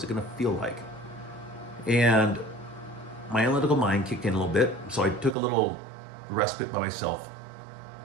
it going to feel like? And my analytical mind kicked in a little bit, so I took a little respite by myself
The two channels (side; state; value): left; drops out; at 5.4 s